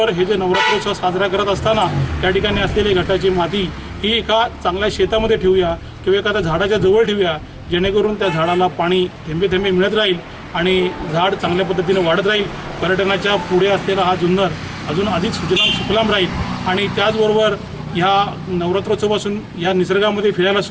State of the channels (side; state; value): both; identical; correlation 1.00